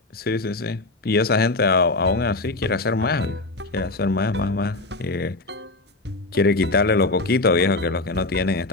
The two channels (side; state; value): right; quieter; 3.1 dB